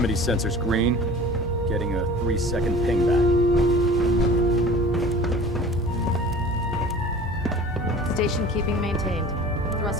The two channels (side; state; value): both; normal; correlation 0.42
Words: sensor's green. Getting a 3-second ping back. Station keeping maintained.